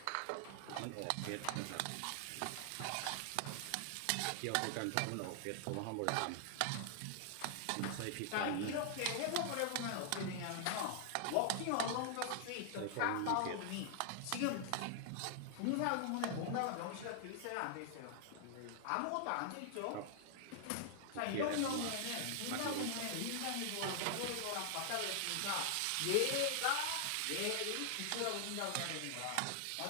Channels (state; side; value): different; both; correlation 0.00